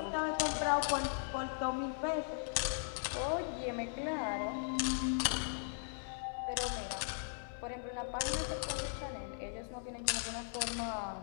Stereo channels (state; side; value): silent; right; 52 dB below the other